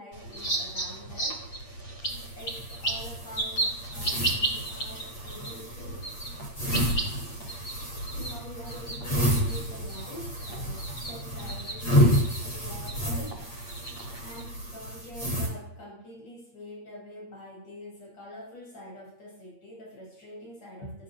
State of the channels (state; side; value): late; right; 8.6 ms